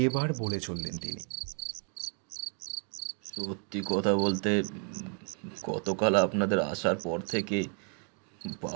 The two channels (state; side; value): quieter; left; 39.6 dB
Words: এবার বলে চললেন তিনি, সত্যি কথা বলতে গতকাল আপনাদের আসার পর থেকে